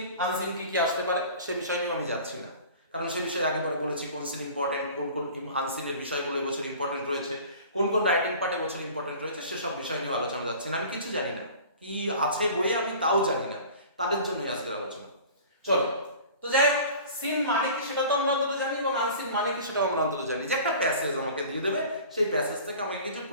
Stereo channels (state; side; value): inverted; both; correlation -0.43